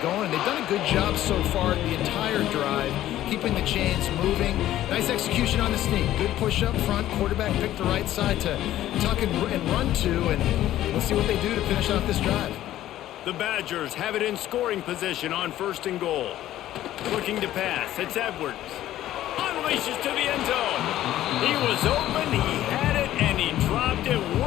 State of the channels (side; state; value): right; quieter; 13.4 dB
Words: going. They've done a good job so far the entire drive, keeping the chains moving. Nice execution on the sneak. Good push up front. Quarterback picked the right side to tuck and run to, and let's see what they do to finish off this drive. The Badgers have it in scoring position on 1st and goal. Looking to pass. It's Edwards. Unleashes to the end zone. He was open, he had it, and he dropped it.